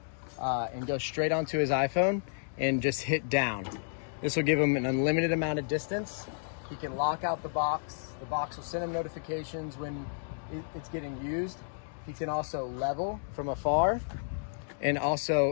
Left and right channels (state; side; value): silent; right; digital silence